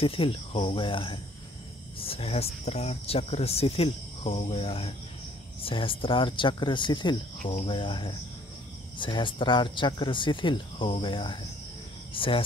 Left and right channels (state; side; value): normal; both; correlation 0.59